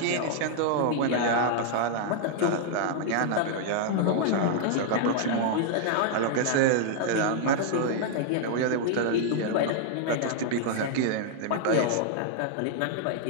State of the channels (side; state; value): both; different; correlation -0.01